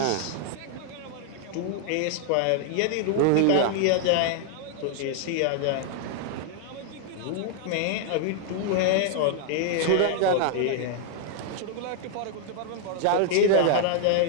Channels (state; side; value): different; both; correlation 0.00